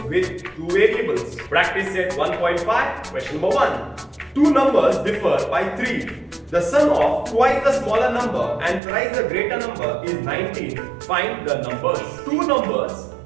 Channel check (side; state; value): left; drops out; at 8.8 s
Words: with two variables. Practice set 1.5, question number 1. Two numbers differ by 3. The sum of twice the smaller number and thrice the greater number is 19. Find the numbers. Two numbers